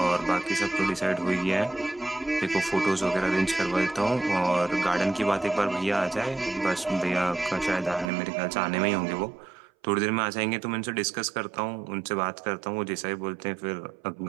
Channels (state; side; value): drops out; left; at 8.1 s